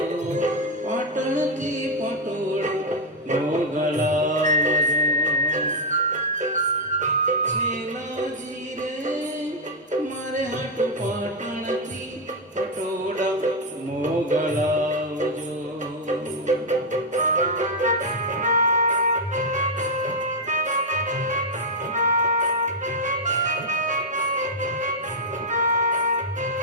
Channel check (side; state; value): both; normal; correlation 0.00